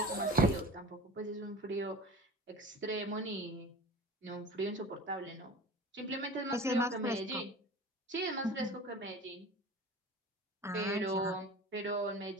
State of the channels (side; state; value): both; normal; correlation 0.39